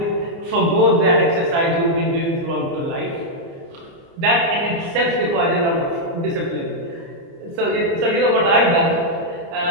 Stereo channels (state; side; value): late; left; 29 ms